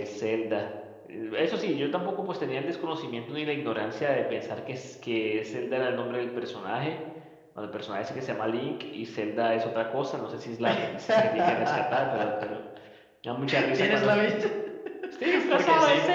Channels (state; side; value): identical; both; correlation 1.00